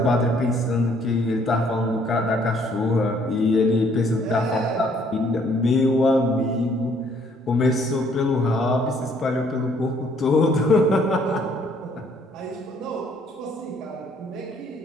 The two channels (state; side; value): normal; both; correlation 0.64